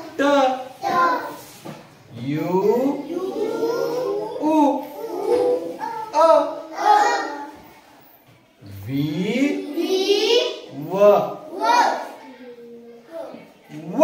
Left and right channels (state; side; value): identical; both; correlation 1.00